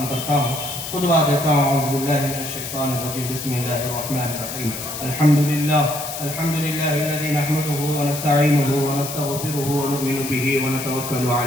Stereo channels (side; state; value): left; noise; hiss, 7 dB below the sound